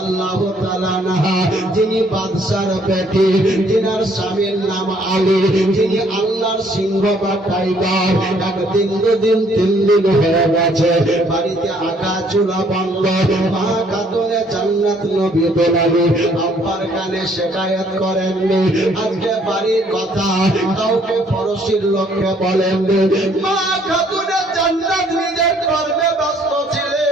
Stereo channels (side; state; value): both; normal; correlation 0.64